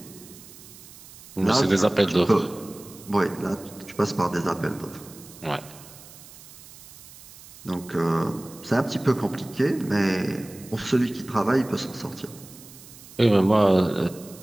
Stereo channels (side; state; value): right; noise; hiss, 19 dB below the sound